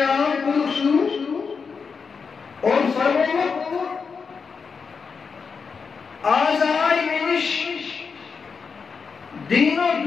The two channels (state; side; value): quieter; right; 5.5 dB